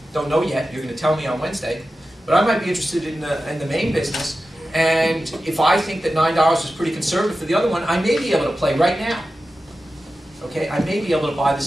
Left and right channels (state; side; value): normal; both; correlation 0.93